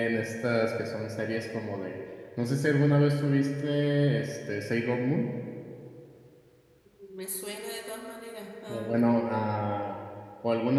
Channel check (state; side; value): identical; both; correlation 1.00